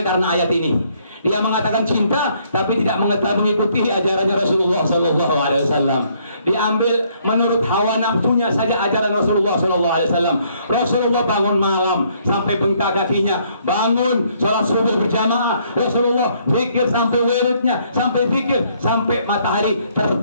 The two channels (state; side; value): inverted; both; correlation -0.67